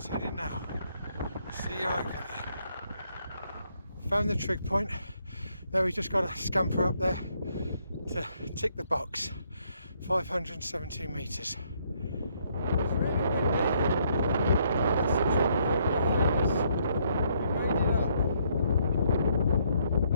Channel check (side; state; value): both; inverted; correlation -0.70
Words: heading now. See you over there. Found the trig point. Now we've just got to scamper up there to tick the box. 517 metres.